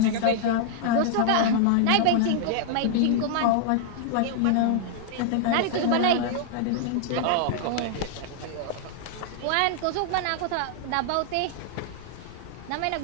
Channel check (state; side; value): different; both; correlation -0.01